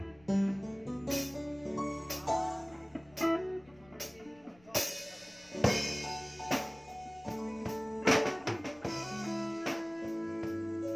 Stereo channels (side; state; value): left; noise; rumble, 27 dB below the sound